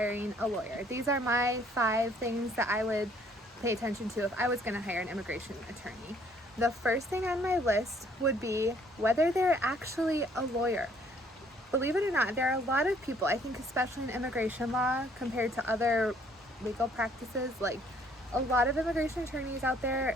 a lawyer. These are my 5 things that I would pay attention to if I was going to hire an immigration attorney. The first thing on my list would be whether they're actually a lawyer. Believe it or not, there are a lot of people, I think especially in immigration law compared to other legal practices, like a lot of immigration attorneys out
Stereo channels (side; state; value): both; normal; correlation 0.62